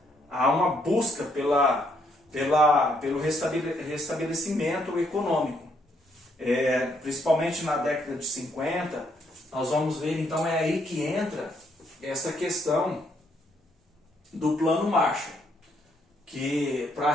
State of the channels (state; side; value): normal; both; correlation 0.72